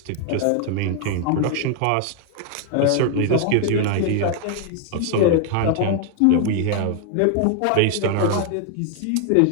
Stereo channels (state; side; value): different; both; correlation 0.00